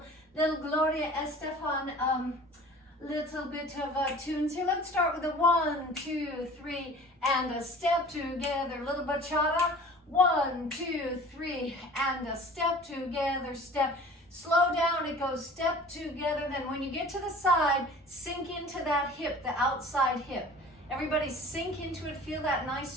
Gloria Estefan little bit of tunes here. Let's start with a 1, 2, 3, and a step together, little bachata. 1, 2, 3, and a step together, step. Slow down, it goes step together. Then when you get to the side, sink into that hip, the outside hip. Everybody sink into it, feel that nice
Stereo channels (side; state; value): both; normal; correlation 0.44